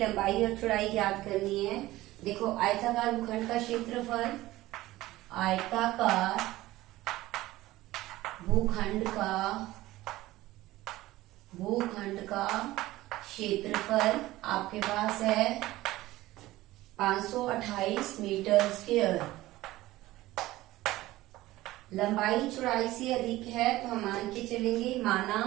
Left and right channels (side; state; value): left; quieter; 17.1 dB